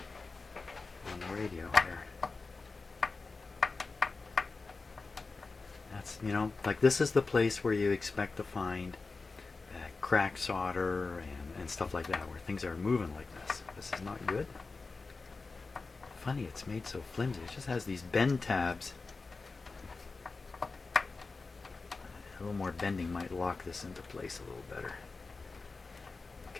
on the radio here. That's, you know, like this is the place where you expect to find cracked solder and stuff like that, where things are moving like this. This is not good. Funny, it's made so flimsy. It just has these bend tabs. A little more bending might lock this into place a little better.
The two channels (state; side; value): quieter; right; 4.0 dB